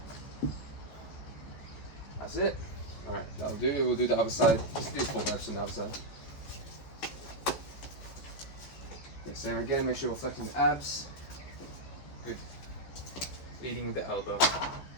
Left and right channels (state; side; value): late; right; 14 ms